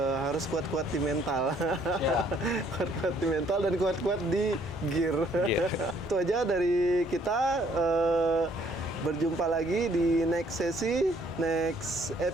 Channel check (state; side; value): normal; both; correlation 0.63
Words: kuat-kuat di mental. Ya. Kuat-kuat di mental dan kuat-kuat di gear. Iya. Itu aja dari kita. Berjumpa lagi di next sesi, next